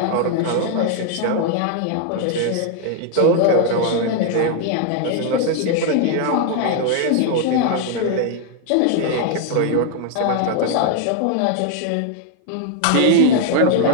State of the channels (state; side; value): different; both; correlation 0.00